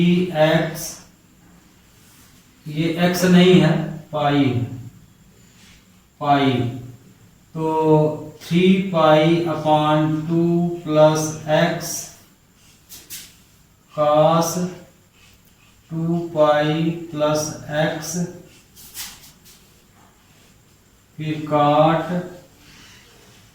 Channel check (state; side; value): identical; both; correlation 1.00